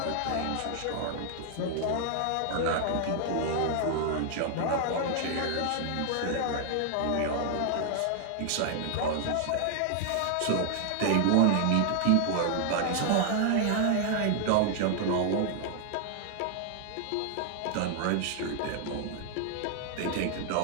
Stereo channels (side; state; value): both; different; correlation 0.00